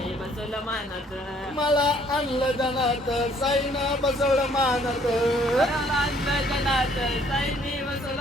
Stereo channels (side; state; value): both; normal; correlation 0.62